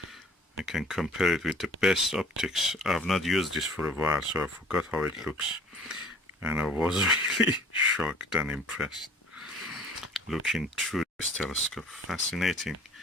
I can compare it with the best optics. I've not used this for a while, so I forgot how it looks. And I was really shocked and impressed looking through this telescope. Fascinating,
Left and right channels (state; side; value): normal; both; correlation 0.50